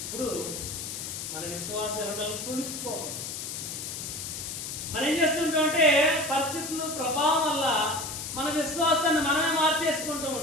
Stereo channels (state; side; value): noise; left; hiss, 6 dB below the sound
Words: ఇప్పుడు మన విశ్వాసం వెళ్ళడం తొణుకుపోకూడదు. మనం ఏం చేస్తుంటాం అంటే పరిస్థితులు ప్రభావం వల్ల మన విశ్వాసాన్ని మనమే మార్చేసుకుంటూ